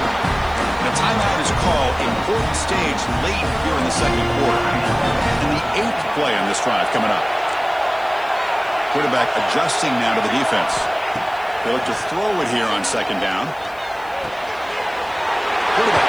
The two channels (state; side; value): noise; left; hiss, 27 dB below the sound